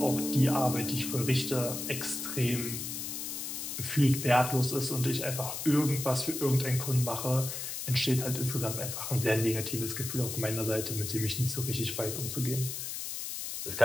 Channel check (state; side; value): noise; left; hiss, 5 dB below the sound